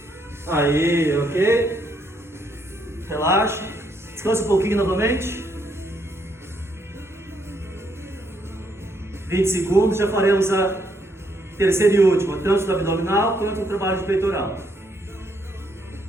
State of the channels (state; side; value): normal; both; correlation 0.73